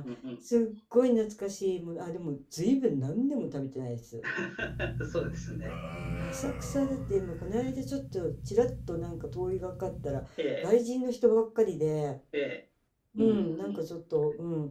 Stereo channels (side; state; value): both; identical; correlation 1.00